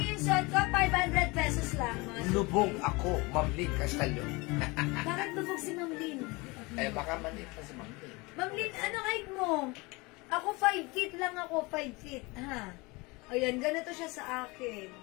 yung suot ko, 500 pesos lang. Mga suki. Lubog ako, Ma'am Lynn Castallo. Bakit lubog si Ma'am Lynn? Eh, baka maliit pa si Ma'am Lynn. Ma'am Lynn, ano height mo? Ako 5 feet lang ako, 5 feet. Ha? Ayan, ganito siya sa akin.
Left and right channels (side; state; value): right; quieter; 25.1 dB